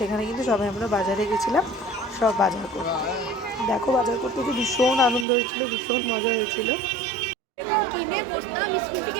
কিন্তু সবাই আমরা বাজারে গেছিলাম সব বাজার করতে। দেখো, বাজার করতে কি ভীষণ আনন্দ হয়েছিল, ভীষণ মজা হয়েছিল।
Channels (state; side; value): drops out; left; at 5.2 s